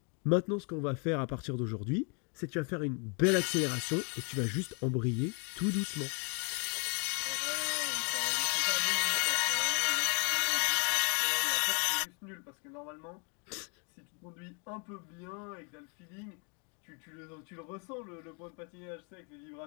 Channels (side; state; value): right; quieter; 36.6 dB